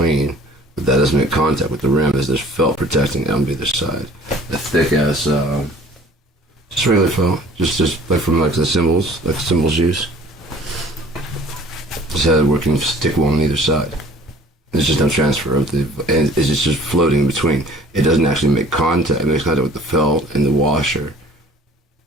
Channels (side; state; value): both; normal; correlation 0.51